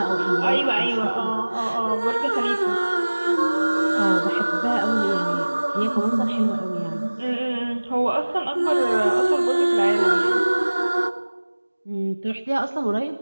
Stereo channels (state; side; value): inverted; both; correlation -1.00